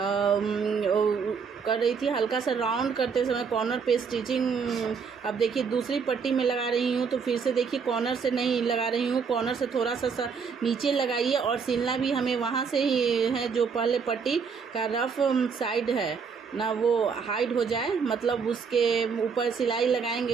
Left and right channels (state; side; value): quieter; left; 5.8 dB